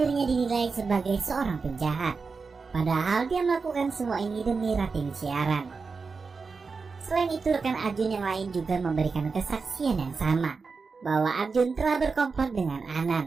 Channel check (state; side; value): quieter; left; 4.7 dB